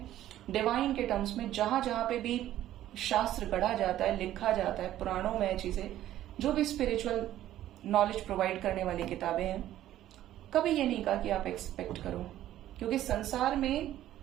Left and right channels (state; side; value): quieter; left; 13.0 dB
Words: डिवाइन के टर्म्स में, जहां जहां पे भी शास्त्र गढ़ा जाता है, लिखा जाता है, पुराणों में चीजें, जो भी स्पिरिचुअल नॉलेज प्रोवाइड करने वाली किताबें हैं, कभी ये नहीं कहा कि आप एक्सपेक्ट करो। क्योंकि संसार में